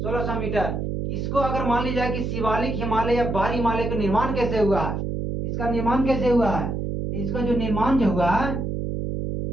1600 मीटर। इसको अगर मान लीजिए कि शिवालिक हिमालय या बाहरी हिमालय का निर्माण कैसे हुआ है, इसका निर्माण कैसे हुआ है, इसका जो निर्माण जो हुआ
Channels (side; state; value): right; noise; hum, 2 dB below the sound